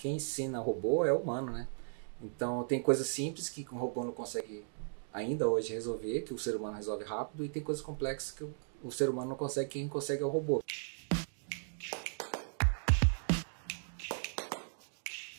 ensina robô é o humano, né? Então, tem coisas simples que o robô não consegue ainda hoje resolver, que o ser humano resolve rápido, e tem coisas complexas que o ser humano não consegue, quem consegue é o robô.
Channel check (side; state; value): left; silent; digital silence